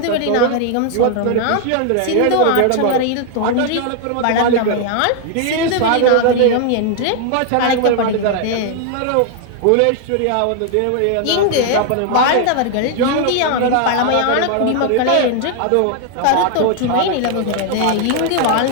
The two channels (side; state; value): both; different; correlation 0.00